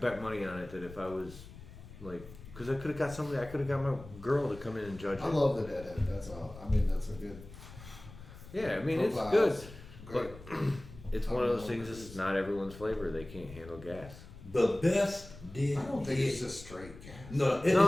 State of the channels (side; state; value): left; noise; rumble, 16 dB below the sound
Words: money on it that if I was like, because I could have got somebody, I could have got my girl to come in and judge it. I love the deadhead. That's all. I mean, that's a good. Yeah, I mean it's profile. good, Great. but it's one of those things. This is not everyone's flavor. They can't handle gas. The best did. I don't think it's just straight gas. No,